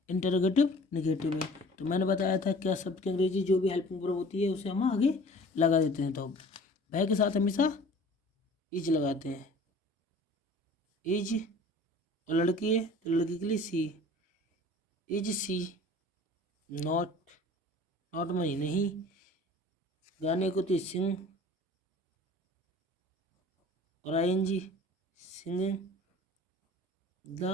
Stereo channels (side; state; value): both; normal; correlation 0.46